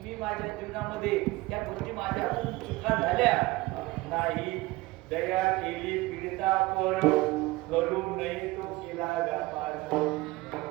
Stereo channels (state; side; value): quieter; left; 20.6 dB